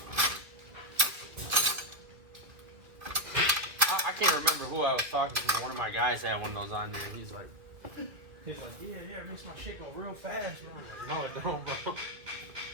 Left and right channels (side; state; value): left; late; 2.5 ms